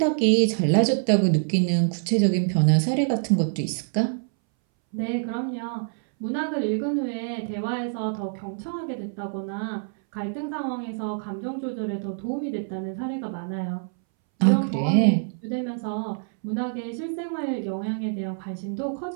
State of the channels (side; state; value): left; silent; 61 dB below the other